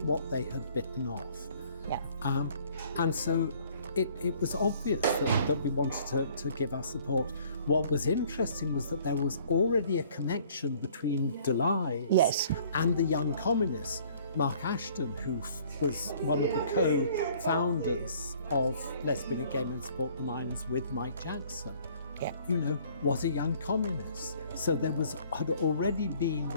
what they had bitten off. Yeah. And so it was obvious that we wanted to give our support. What was interesting was that there was already a connection between Delise and the Young Communists. Mark Ashton, who was one of the co-founders of Lesbian and Gay Men Support the Miners with Mike Jackson, was a young communist. So there had already been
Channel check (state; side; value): inverted; both; correlation -0.57